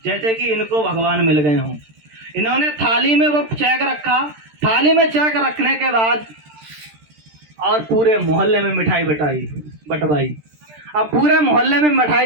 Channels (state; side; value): late; left; 13 ms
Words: जैसे कि इनको भगवान मिल गए हों। इन्होंने थाली में वो चेक रखा, थाली में चेक रखने के बाद और पूरे मोहल्ले में मिठाई बटवाई। अब पूरे मोहल्ले में